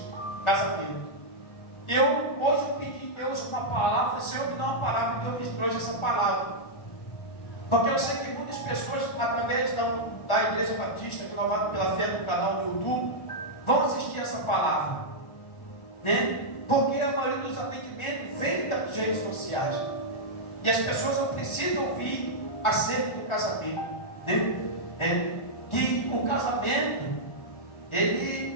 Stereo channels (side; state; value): right; late; 1.4 ms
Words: casamento. E hoje eu pedi a Deus uma palavra, Senhor, me dá uma palavra, Deus me trouxe essa palavra. Porque eu sei que muitas pessoas, através da Igreja Batista, que Renovada pela Fé no canal no YouTube, vão assistir essa palavra. Né? Porque a maioria dos atendimentos vem das redes sociais. E as pessoas não precisam ouvir acerca do casamento. Né? Que o casamento,